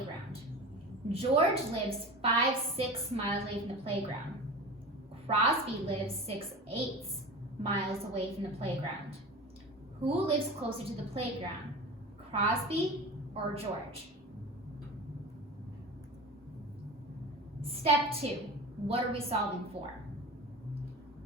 George lives 5-6 miles away from the playground. Crosby lives 6-8 miles away from the playground. Who lives closer to the playground, Crosby or George? Step 2, what are we solving for?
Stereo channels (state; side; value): normal; both; correlation 0.32